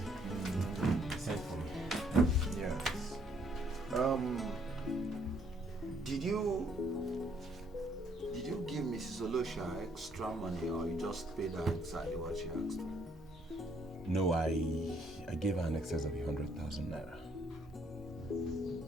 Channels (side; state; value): both; normal; correlation 0.67